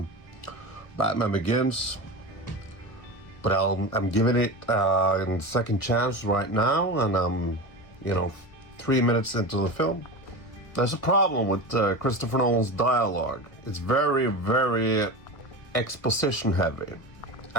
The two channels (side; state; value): right; late; 1.5 ms